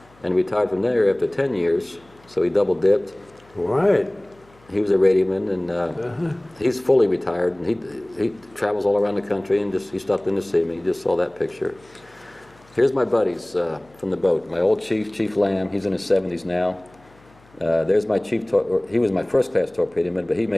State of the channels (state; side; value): noise; left; hum, 29 dB below the sound